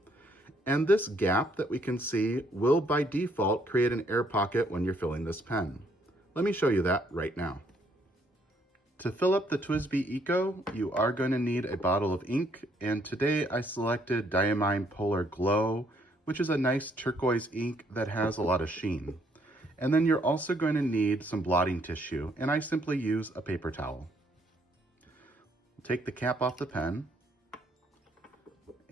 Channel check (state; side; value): normal; both; correlation 0.69